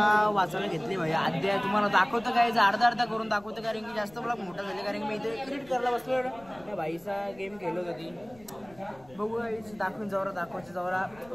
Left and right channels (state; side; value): noise; left; rumble, 24 dB below the sound